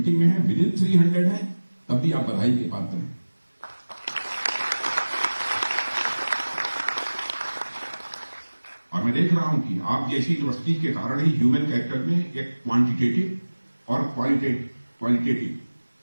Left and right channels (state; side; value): inverted; both; correlation -1.00